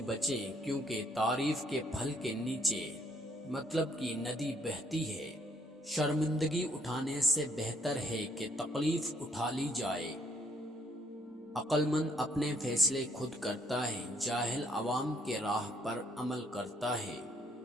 بچیں، کیونکہ تعریف کے پھل کے نیچے مطلب کی ندی بہتی ہے۔ شرمندگی اٹھانے سے بہتر ہے کہ تکلیف اٹھا لی جائے۔ عقل مند اپنے فیصلے خود کرتا ہے، جاہل عوام کے راہ پر عمل کرتا ہے۔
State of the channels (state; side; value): normal; both; correlation 0.67